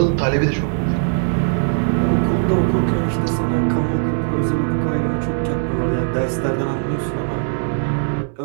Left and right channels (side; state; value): left; silent; digital silence